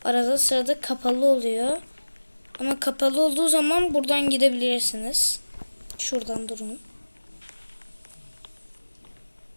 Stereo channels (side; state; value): both; inverted; correlation -1.00